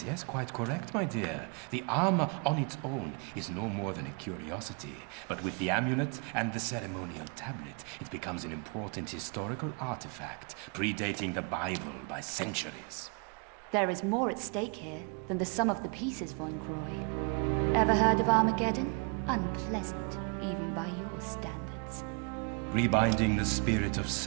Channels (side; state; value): left; quieter; 35.5 dB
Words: yes, quite correct, my dear. The armor on its own is no more than a curiosity, but with the amulet and the ceremonial tablet, it becomes an important historical artifact, predating the Bible by centuries. There is more at stake here than the sum of the pieces, von Croy. Ever heard of Armageddon? Unpleasant, even by your standards. Rebinding the spirit of